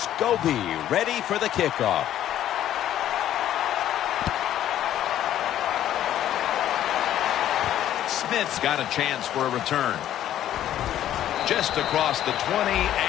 Scobie ready for the kickoff. Smith's got a chance for a return. Just across the 20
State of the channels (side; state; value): right; quieter; 11.8 dB